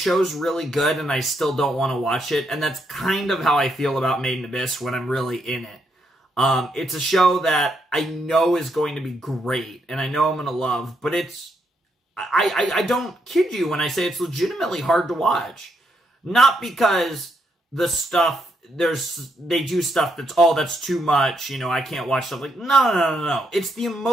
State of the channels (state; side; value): normal; both; correlation 0.78